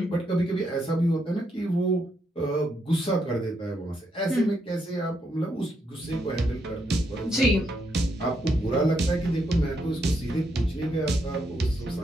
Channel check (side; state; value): both; normal; correlation 0.78